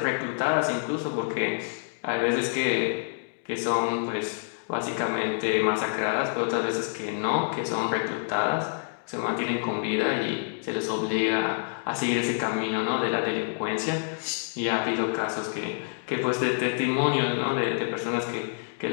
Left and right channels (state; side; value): silent; right; digital silence